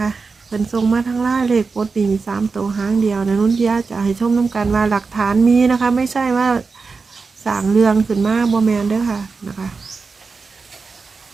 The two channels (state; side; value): quieter; left; 4.6 dB